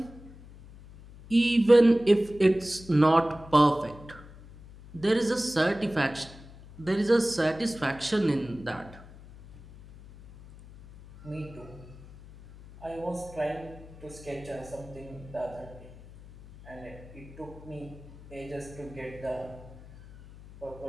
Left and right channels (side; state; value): left; noise; hum, 19 dB below the sound